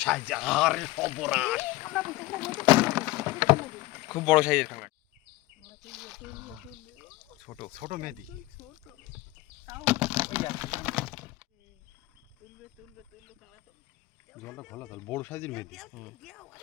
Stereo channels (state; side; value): quieter; right; 18.6 dB